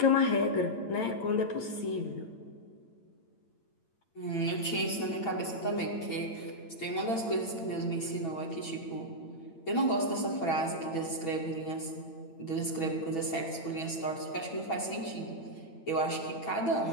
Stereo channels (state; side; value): late; right; 8.9 ms